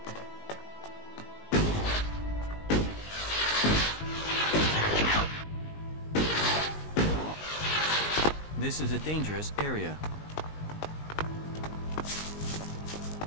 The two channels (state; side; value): late; right; 19 ms